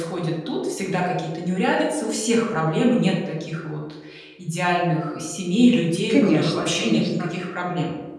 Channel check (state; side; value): identical; both; correlation 1.00